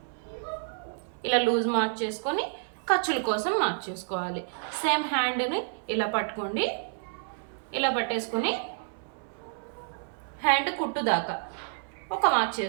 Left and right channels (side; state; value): left; silent; 58 dB below the other